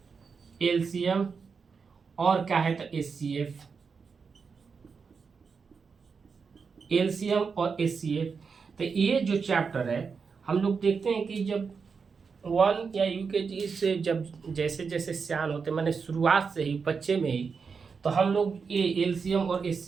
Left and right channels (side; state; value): left; quieter; 5.4 dB